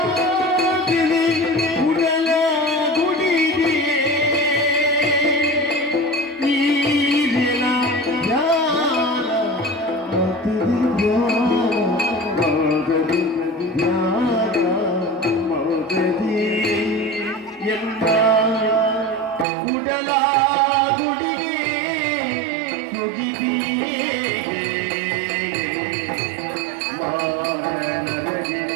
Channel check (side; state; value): left; drops out; at 19.5 s